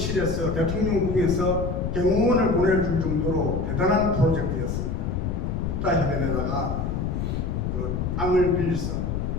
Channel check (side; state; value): left; noise; rumble, 2 dB below the sound